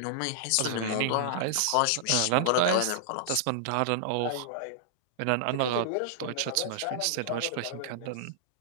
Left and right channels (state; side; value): different; both; correlation -0.01